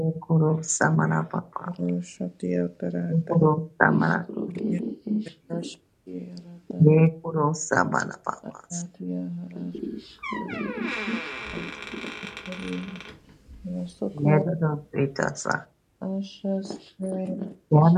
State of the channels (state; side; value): identical; both; correlation 1.00